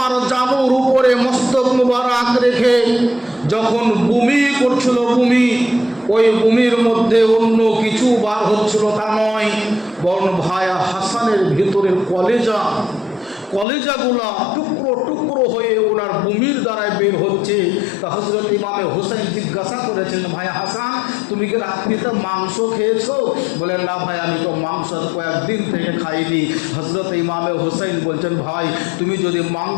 জানুর উপরে মস্তক মুবারক রেখে যখন বমি করছিল, ওই বমির মধ্যে অন্য কিছু বার হচ্ছিল তা নয়, বরং ভাই হাসানের ভিতরের কলেজাগুলা টুকরো টুকরো হয়ে ওনার বমির দ্বারায় বের হচ্ছে। তা হযরত ইমামে হুসাইন জিজ্ঞাসা করেছেন, ভাই হাসান তুমি কি রাত্রিতে মাংস খেয়েছো? বলেন, না ভাই আমি তো মাংস কয়েকদিন থেকে খাইনি। হযরত ইমামে হুসাইন বলছেন, ভাই তুমি যদি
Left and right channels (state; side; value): drops out; right; at 13.7 s